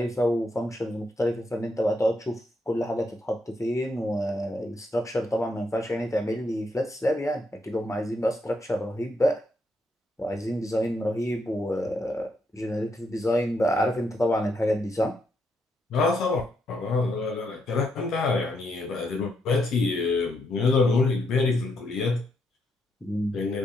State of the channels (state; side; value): normal; both; correlation 0.78